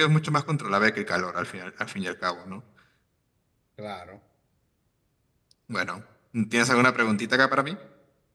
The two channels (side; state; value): both; identical; correlation 1.00